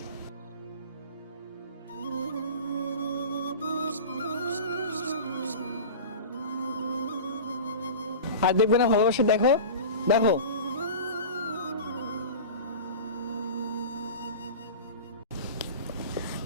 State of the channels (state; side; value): inverted; both; correlation -0.34